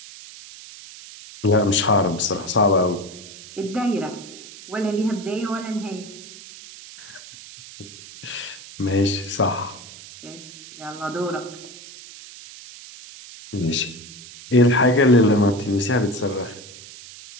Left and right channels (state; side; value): noise; right; hiss, 16 dB below the sound